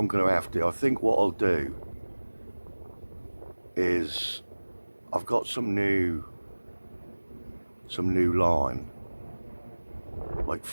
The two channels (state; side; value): inverted; both; correlation -1.00